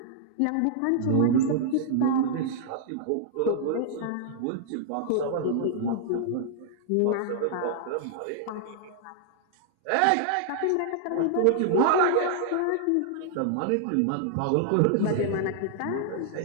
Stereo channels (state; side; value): different; both; correlation -0.01